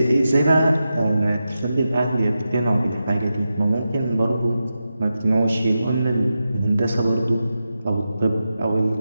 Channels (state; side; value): inverted; both; correlation -0.90